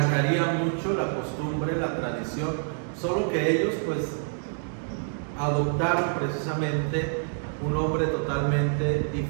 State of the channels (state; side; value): silent; left; digital silence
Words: mucho la costumbre, la tradición, solo que ellos pues adoptaron precisamente un nombre totalmente